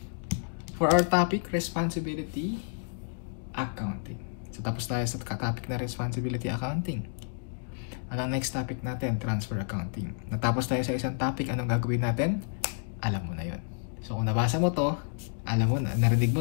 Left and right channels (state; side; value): silent; right; digital silence